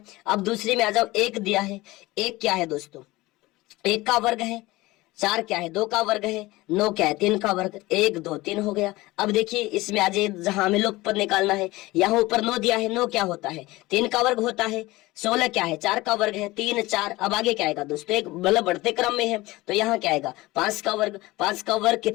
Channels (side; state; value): right; quieter; 19.8 dB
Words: अब दूसरी में आ जाओ, 1 दिया है, 1 क्या है दोस्तों, 1 का वर्ग है, 4 क्या है, 2 का वर्ग है, 9 क्या है, 3 का वर्ग, 1 2 3 हो गया। अब देखिए इसमें आ जाए, जहां हमें लोग पद निकालना है, यहाँ ऊपर 9 दिया है, 9 क्या होता है, 3 का वर्ग होता है, 16 क्या है, 4 का वर्ग है, 3 4। अब आगे क्या आएगा दोस्तों, एक मतलब बढ़ते क्रम में है, तो यहाँ क्या आएगा, 5 का वर्ग, 5 का वर्ग